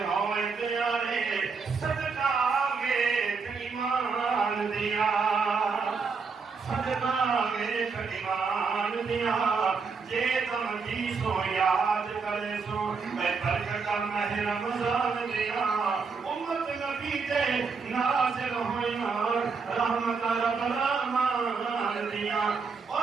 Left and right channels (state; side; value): quieter; left; 5.0 dB